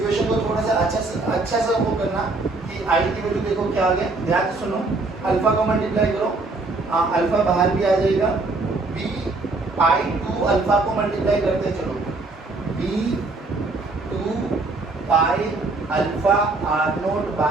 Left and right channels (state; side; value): quieter; left; 3.4 dB